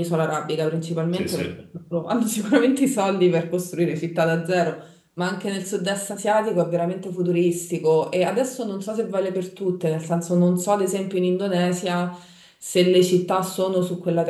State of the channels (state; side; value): identical; both; correlation 1.00